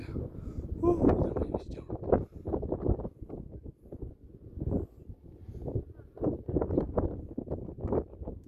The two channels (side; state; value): both; identical; correlation 1.00